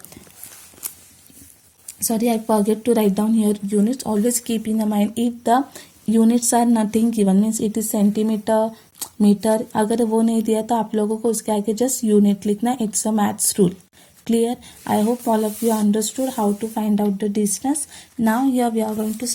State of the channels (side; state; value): both; identical; correlation 1.00